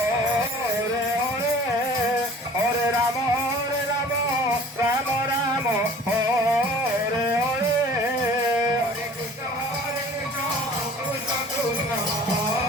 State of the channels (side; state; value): both; normal; correlation 0.47